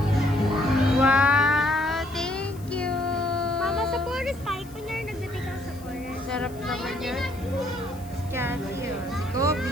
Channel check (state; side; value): noise; left; hiss, 23 dB below the sound